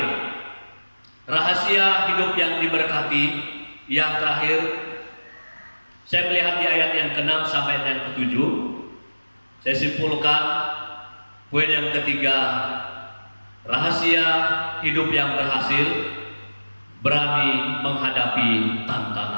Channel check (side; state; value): both; inverted; correlation -1.00